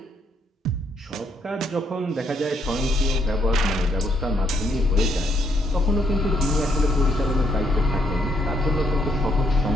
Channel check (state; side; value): normal; both; correlation 0.73